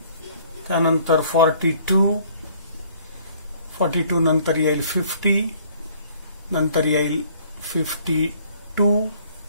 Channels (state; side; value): inverted; both; correlation -0.58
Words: त्यानंतर 42 नंतर येईल 50, नंतर येईल 52